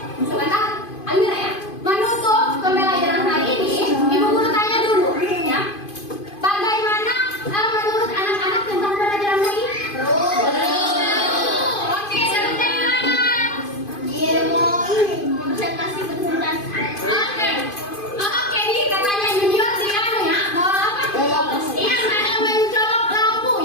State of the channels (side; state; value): right; late; 2.5 ms